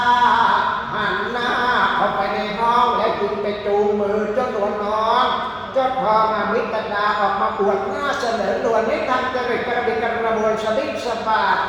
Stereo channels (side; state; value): both; identical; correlation 1.00